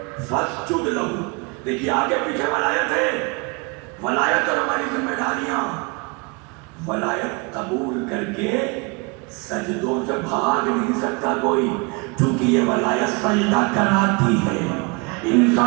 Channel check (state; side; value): quieter; left; 29.9 dB